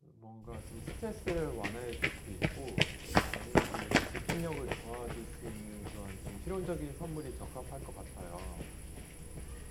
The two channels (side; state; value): both; identical; correlation 1.00